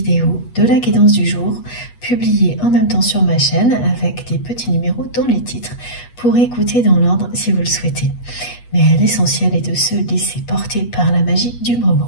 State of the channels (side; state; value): right; late; 8.2 ms